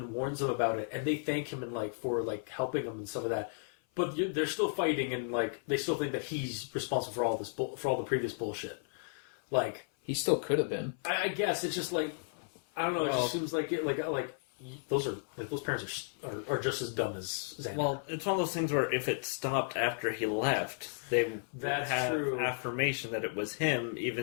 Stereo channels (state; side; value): silent; right; 55 dB below the other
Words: warns them about it, and they thank him for helping them and stuff of that. But they're still fighting, and they still think that he's responsible for all this for all the previous bullshit. He still could have been. I guess it's just I don't know. It just seems like it those parents are just as dumb as Xander. Well, it's one of those things where if it stopped after he left, they would have true. affirmation that it was him,